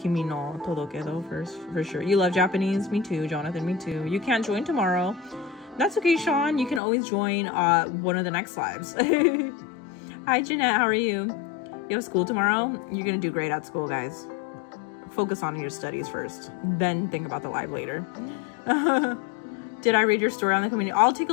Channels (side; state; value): right; drops out; at 6.8 s